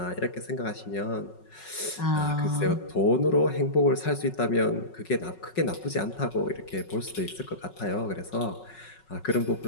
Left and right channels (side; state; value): right; late; 5.4 ms